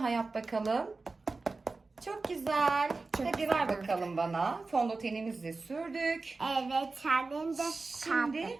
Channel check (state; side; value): quieter; left; 3.7 dB